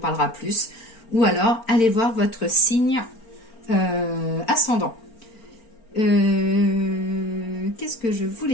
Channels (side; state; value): right; late; 4.4 ms